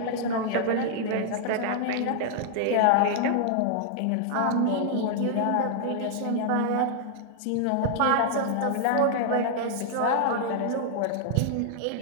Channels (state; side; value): different; both; correlation -0.01